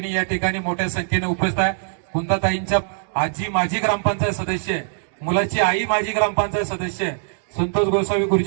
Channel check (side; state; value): left; silent; digital silence